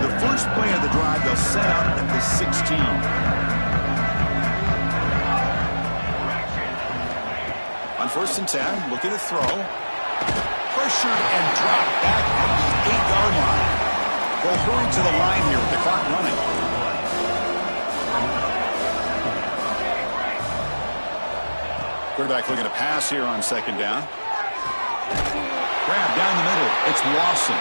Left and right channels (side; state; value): both; inverted; correlation -1.00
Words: first play of the drive, they'll set up at the 16. On first and 10, looking to throw. Pressured and dropped back at the 8-yard line. They'll hurry to the line here with the clock running. Quarterback looking to pass here on second down. Grab down the middle. It's Lawson.